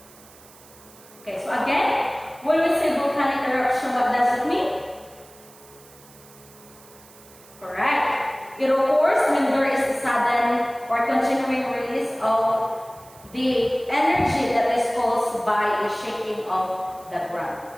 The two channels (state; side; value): noise; right; hiss, 23 dB below the sound